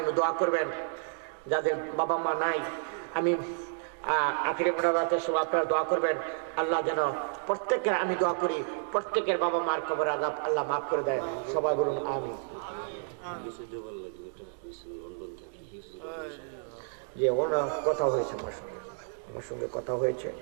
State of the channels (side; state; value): left; silent; digital silence